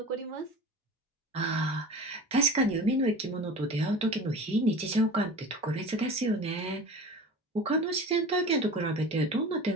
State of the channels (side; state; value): both; normal; correlation 0.36